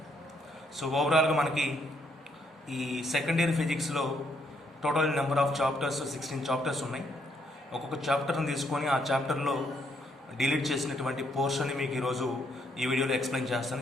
సో ఓవరాల్గా మనకి ఈ సెకండ్ ఇయర్ ఫిజిక్స్లో total number of chapters 16 chapters ఉన్నాయి. ఒక్కొక్క చాప్టర్ని తీసుకొని ఆ చాప్టర్లో డిలీట్ చేసినటువంటి పోర్షన్ని మీకు ఈరోజు ఈ వీడియోలో ఎక్స్ప్లెయిన్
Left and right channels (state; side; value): normal; both; correlation 0.73